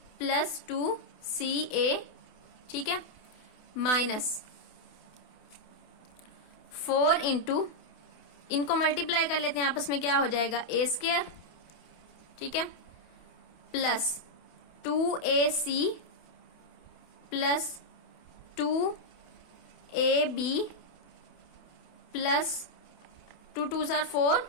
plus 2ca। ठीक है, माइनस 4 इंटू, इनको मल्टीप्लाई कर लेते हैं आपस में, क्या हो जाएगा a², ठीक है, plus 2ac plus 2ab plus 2 2s are 4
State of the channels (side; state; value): right; late; 28 ms